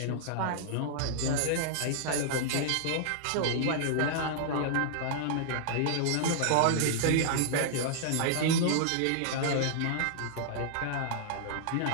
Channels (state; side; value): different; both; correlation -0.01